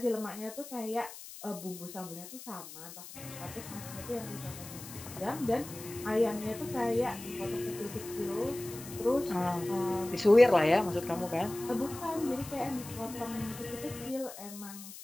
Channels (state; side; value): noise; left; hiss, 14 dB below the sound